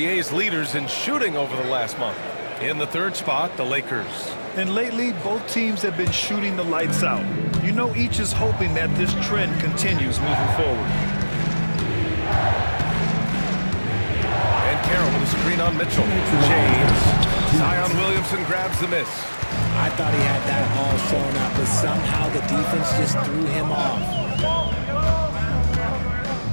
leaders in shooting over the last month. In the 3rd spot, the Lakers. And lately, both teams have been shooting the lights out. You know, each is hoping that this trend continues moving forward. And Carroll with a screen on Mitchell. James. Zion Williamson grabs the miss. I thought he had that all sewn up, but somehow the defense just threw him off.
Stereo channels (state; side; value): inverted; both; correlation -1.00